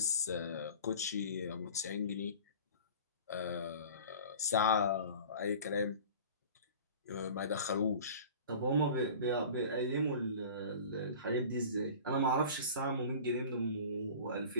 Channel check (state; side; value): inverted; both; correlation -0.41